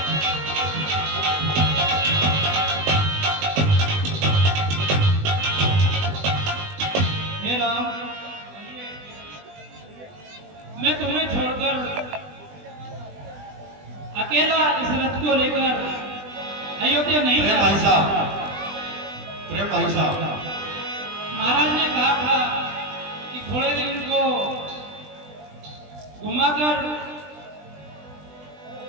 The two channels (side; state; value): left; late; 20 ms